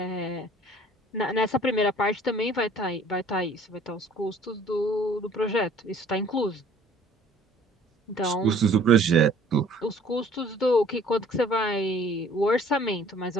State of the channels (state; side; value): normal; both; correlation 0.54